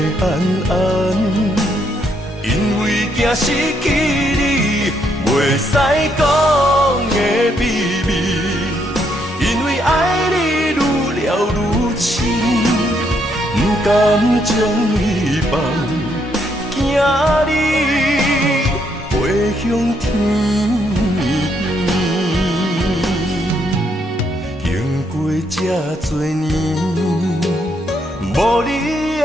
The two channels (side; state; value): both; normal; correlation 0.74